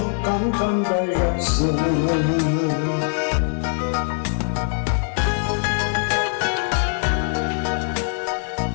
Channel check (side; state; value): right; silent; 64 dB below the other